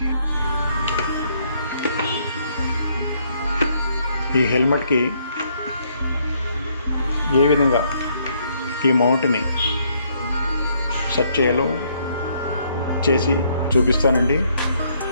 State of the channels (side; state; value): both; inverted; correlation -0.69